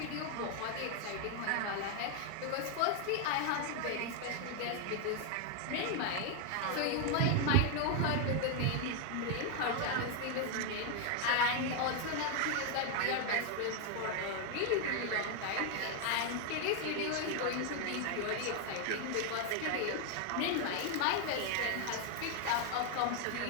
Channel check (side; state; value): both; different; correlation 0.00